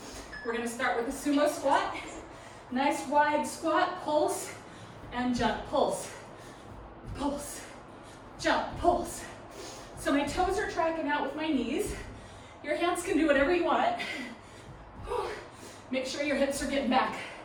We're going to start with a sumo squat. Nice wide squat, pulse, and jump, pulse, pulse, jump, pulse, So my toes are tracking out with my knees. Your hands can do whatever you want. Make sure your hips are getting back.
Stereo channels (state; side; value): identical; both; correlation 1.00